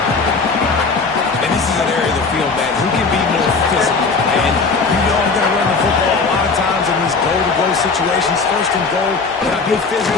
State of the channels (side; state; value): right; quieter; 4.4 dB